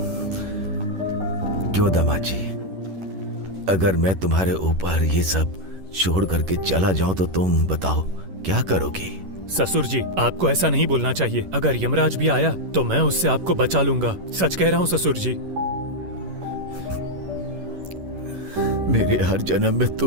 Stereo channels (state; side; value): late; left; 11 ms